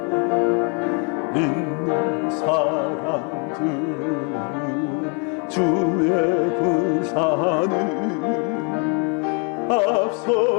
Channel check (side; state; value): right; quieter; 37.0 dB